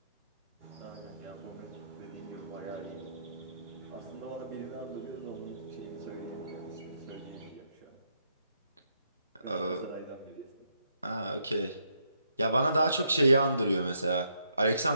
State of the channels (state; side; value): inverted; both; correlation -0.76